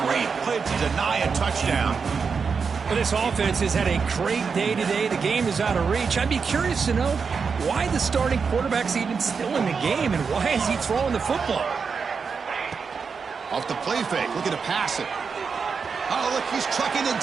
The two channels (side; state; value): left; quieter; 5.5 dB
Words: Great play to deny a touchdown. Well, this offense has had a great day today. The game is out of reach. I'd be curious to know why the starting quarterback's even still in the game and why is he throwing the football? Off the play fake, looking to pass it. Oh, look, he's trucking it